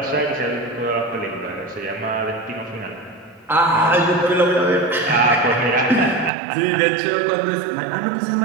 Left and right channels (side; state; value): left; drops out; at 6.3 s